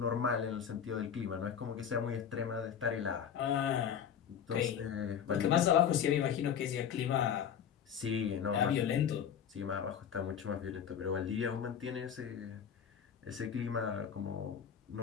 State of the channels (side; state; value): right; quieter; 8.2 dB